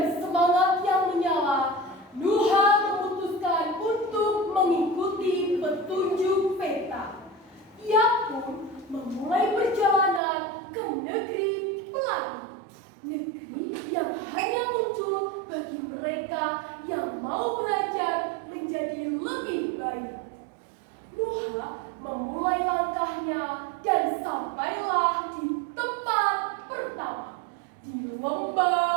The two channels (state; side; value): drops out; left; at 10.2 s